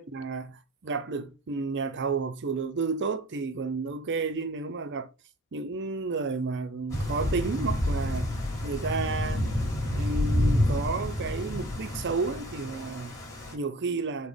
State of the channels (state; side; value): normal; both; correlation 0.45